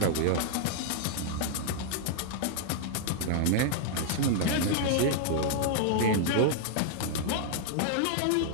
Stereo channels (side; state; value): both; different; correlation -0.01